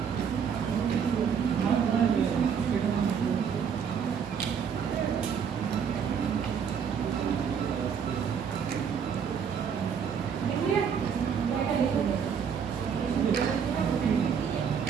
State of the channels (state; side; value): quieter; left; 7.1 dB